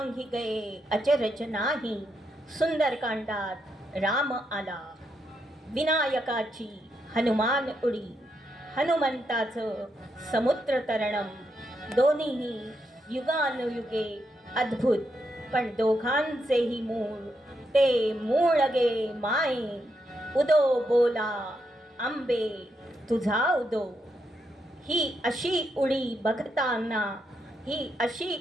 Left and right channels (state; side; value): normal; both; correlation 0.81